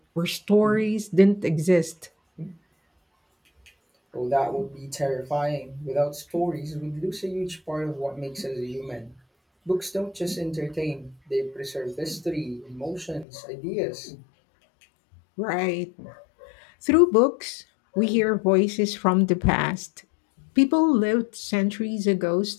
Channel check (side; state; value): right; drops out; at 13.2 s